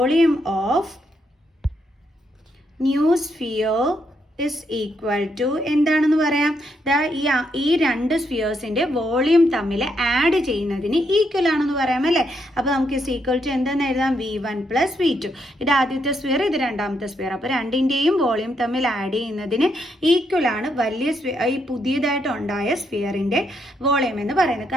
of new sphere is equal to എന്താണെന്ന് പറയാം? ഈ 2 സ്ഫിയേഴ്സിൻ്റെ വോളിയം തമ്മിൽ ആഡ് ചെയ്യുന്നതിന് ഈക്വൽ ആണെന്ന് പറയാം, അല്ലേ? അപ്പോൾ നമുക്ക് ഇസ് ഈക്വൽ ടു എന്താണെന്ന് എഴുതാം? V1 + V2. ഇത് ആദ്യത്തെ സ്ഫിയർ, ഇത് രണ്ടാമത്തെ സ്ഫിയർ. അപ്പോൾ രണ്ടിൻ്റെയും വോളിയം തമ്മിൽ ആഡ് ചെയ്യുന്നതിന് ഈക്വൽ ആണ് വലിയ ഈ പുതിയതായിട്ട് ഉണ്ടായ സ്ഫിയറിൻ്റെ വോളിയം എന്ന് പറയുന്നത്.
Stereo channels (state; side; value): normal; both; correlation 0.77